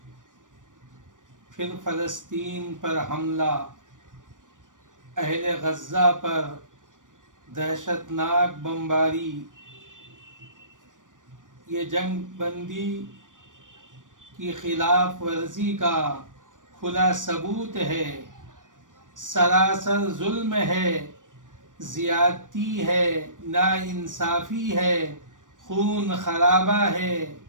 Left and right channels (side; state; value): left; late; 0.88 ms